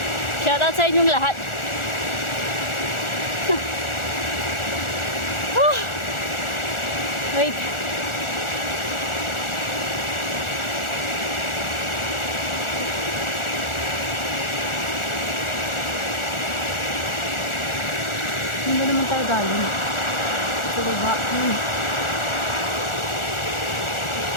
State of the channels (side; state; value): right; late; 1.4 ms